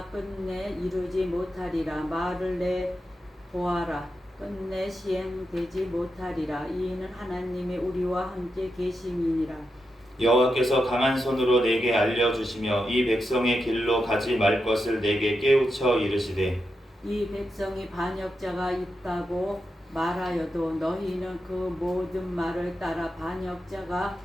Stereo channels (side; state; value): both; normal; correlation 0.87